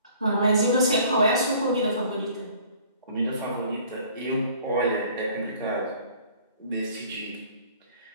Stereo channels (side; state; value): both; inverted; correlation -0.53